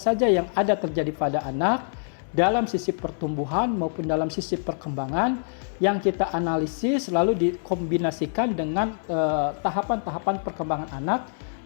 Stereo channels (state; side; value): silent; right; digital silence